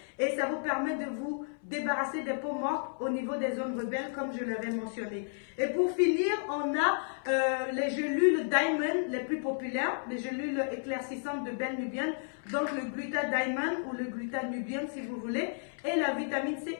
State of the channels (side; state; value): right; silent; 56 dB below the other